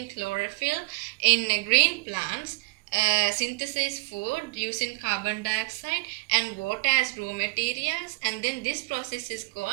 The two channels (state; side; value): quieter; left; 29.2 dB